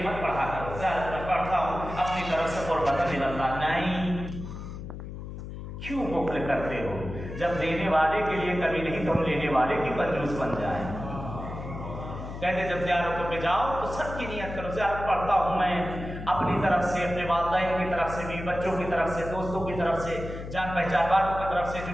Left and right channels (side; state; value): left; noise; hum, 9 dB below the sound